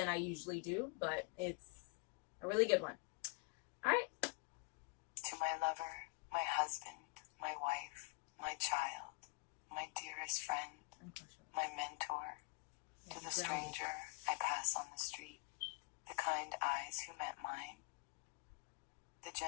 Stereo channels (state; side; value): quieter; right; 30.5 dB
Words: I usually do, but it's a really good one. All right. To my lover, my husband, my wife, my child, my dearest friend, my mentor, to the stranger I pass on the street, the kind eyes who met mine, the